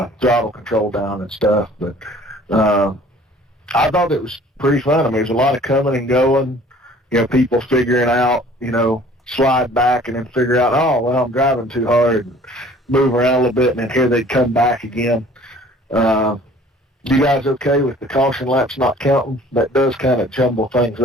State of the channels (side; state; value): both; normal; correlation 0.52